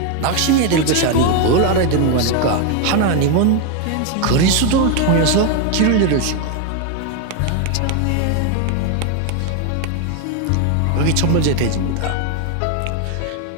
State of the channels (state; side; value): different; both; correlation 0.01